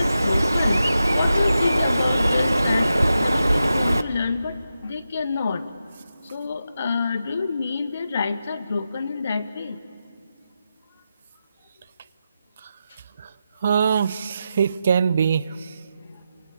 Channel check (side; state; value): both; inverted; correlation -0.88